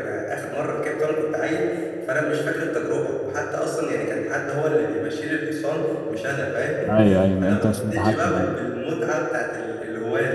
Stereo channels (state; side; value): identical; both; correlation 1.00